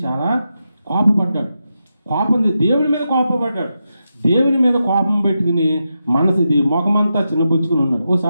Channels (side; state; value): both; inverted; correlation -0.87